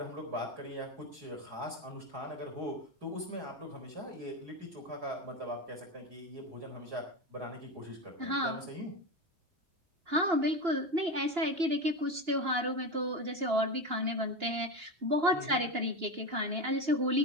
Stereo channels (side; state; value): left; late; 2.9 ms